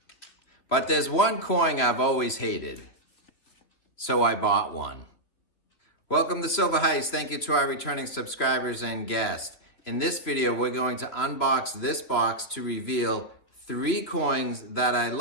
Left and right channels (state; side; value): late; right; 3.0 ms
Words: but there's one coin I've always hated, so I bought one. Welcome to Silver Heist. Thank you to our returning subscribers and guests. In this video, we're going to unbox this box to reveal 3 coins that I